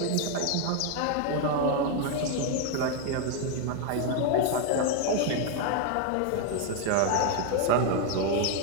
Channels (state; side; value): different; both; correlation 0.01